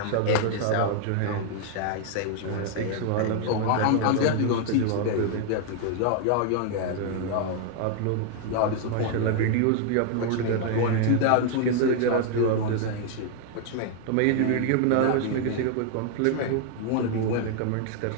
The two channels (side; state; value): both; different; correlation 0.00